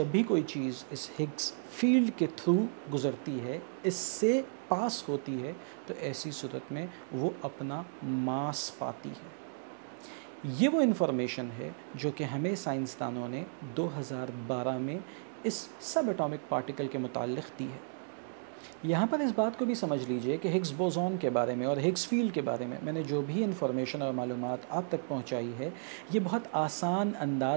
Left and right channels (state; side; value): silent; left; digital silence